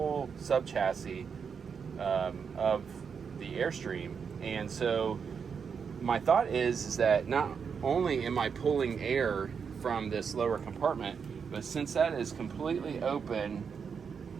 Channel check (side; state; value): left; quieter; 6.3 dB